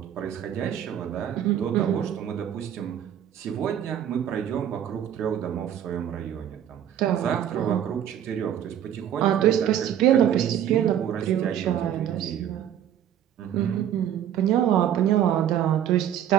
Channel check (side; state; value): left; quieter; 10.1 dB